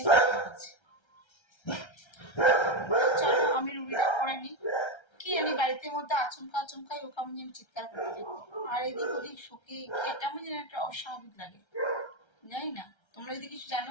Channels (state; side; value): late; right; 1.3 ms